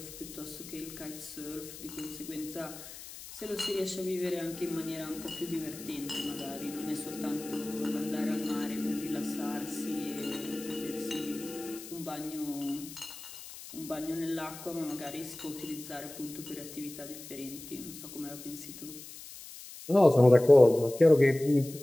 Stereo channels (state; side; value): noise; left; hiss, 14 dB below the sound